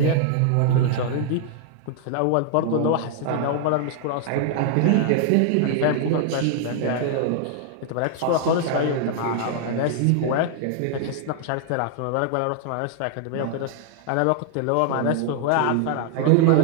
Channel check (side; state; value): both; different; correlation 0.00